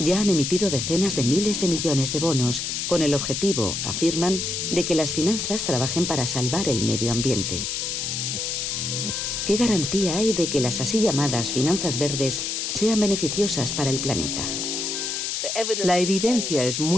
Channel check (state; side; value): noise; left; hiss, 2 dB below the sound